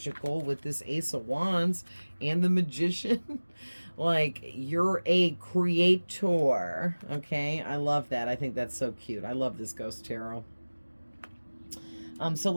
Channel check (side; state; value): both; inverted; correlation -1.00